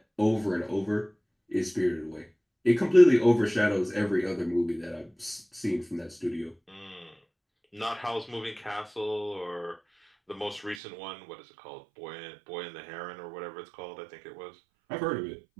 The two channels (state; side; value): drops out; left; at 10.8 s